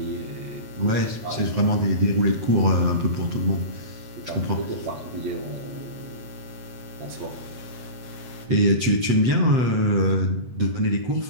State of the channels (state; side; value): late; left; 7.9 ms